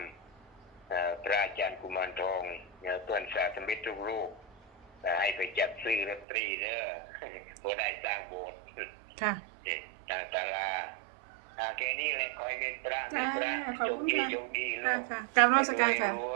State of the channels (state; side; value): drops out; left; at 6.2 s